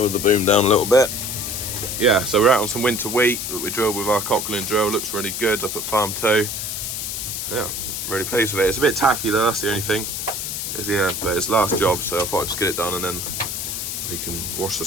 the boom down a little bit. Yeah, so we're out on some winter wheat that we drilled with our Kickerling drill. Looks really good up at farm 2. Yeah, I'm really pleased with it. It's a bit tacky though, that's the only thing. Yeah, but it's last job, so I thought I'd just get it done and then we can wash the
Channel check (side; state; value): left; noise; hiss, 4 dB below the sound